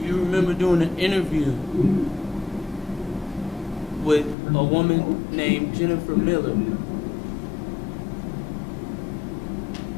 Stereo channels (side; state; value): right; drops out; at 4.4 s